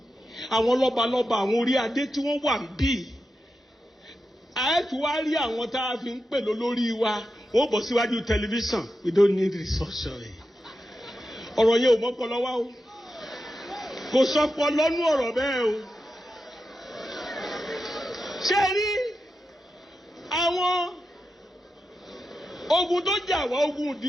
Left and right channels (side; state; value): both; normal; correlation 0.89